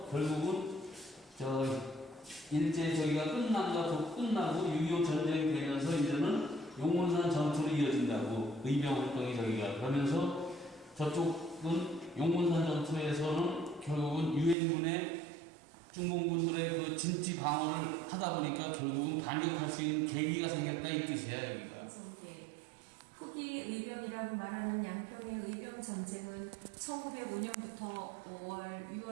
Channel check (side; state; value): left; drops out; at 14.6 s